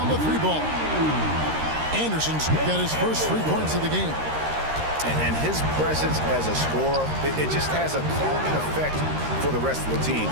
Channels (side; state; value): left; late; 13 ms